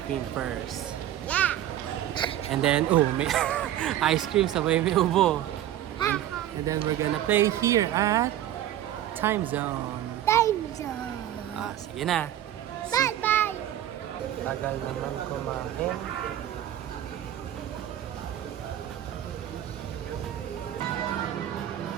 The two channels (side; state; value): left; quieter; 12.1 dB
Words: cream first. Yeah. And then, oh, may ice cream sabay may ubo. And then we're gonna play here at Time Zone. Time zone. Ah, sige na. Bye-bye. Tagal naman kumain.